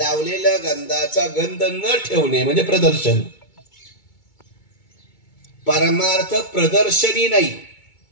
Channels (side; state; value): right; late; 2.2 ms